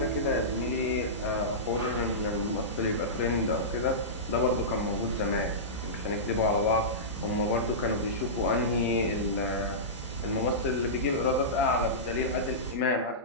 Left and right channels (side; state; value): both; normal; correlation -0.18